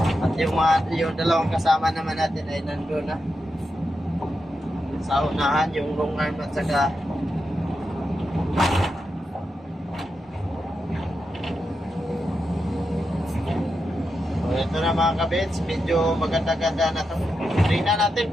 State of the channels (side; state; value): both; normal; correlation 0.87